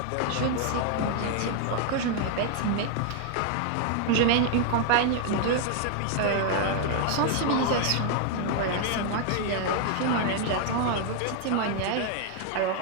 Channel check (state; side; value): different; both; correlation 0.00